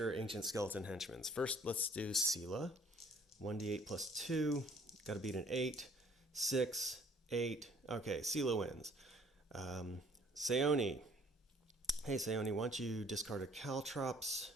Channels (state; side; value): normal; both; correlation 0.57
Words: ancient skeleton henchmen. First, let's do Sela. 1d8 plus 2. Got to beat an 8. 6, 8. Okay, Sela wins. Seoni. Hey, Seoni, why don't you discard a Caltrops